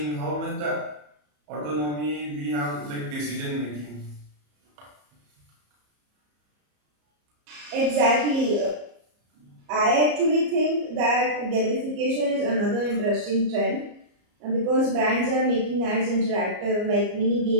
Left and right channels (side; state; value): left; late; 34 ms